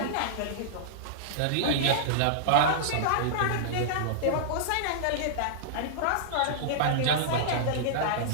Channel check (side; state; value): both; different; correlation -0.02